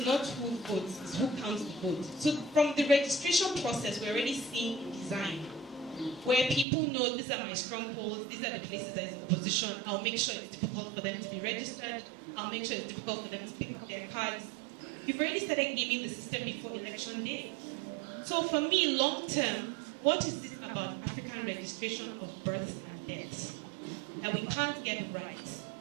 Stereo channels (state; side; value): drops out; left; at 6.7 s